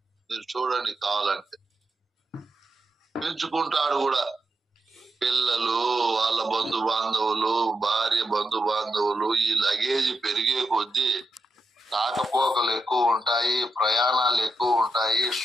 మీరు చూడండి, కావాలంటే పెంచుకుంటాడు కూడా. పిల్లలు, వాళ్ళ బంధు బాంధవులు, భార్య బంధు బాంధవులు, ఈ లగేజ్ పెరిగే కొద్దీ రాకపోకలు ఎక్కువ ఉంటాయి, ప్రయాణాలు ఎక్కువ ఉంటాయి,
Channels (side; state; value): both; normal; correlation 0.85